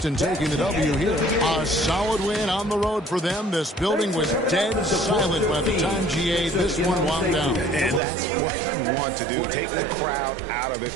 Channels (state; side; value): drops out; left; at 8.0 s